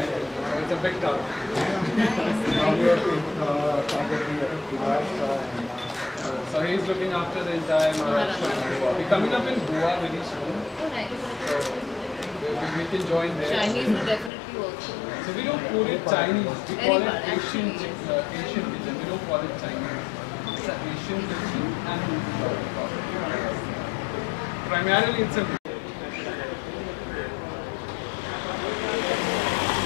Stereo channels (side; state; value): right; drops out; at 14.3 s